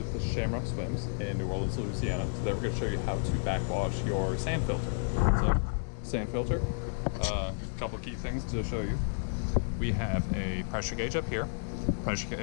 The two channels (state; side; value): silent; right; digital silence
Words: the Shamrock Swims in New Orleans, Louisiana. Today we're going to show you how to backwash your sand filter. So, sand filter, a couple of key things to show you. We have a pressure gauge up here. Pressure